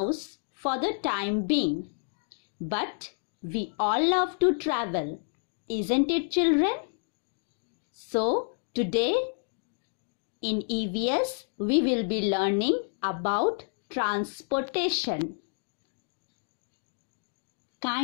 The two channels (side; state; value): right; silent; digital silence